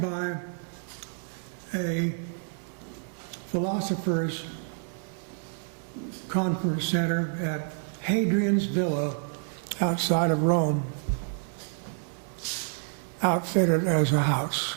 a philosopher's conference center at Hadrian's Villa outside of Rome, outfitted as a house.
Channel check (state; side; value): silent; left; 59 dB below the other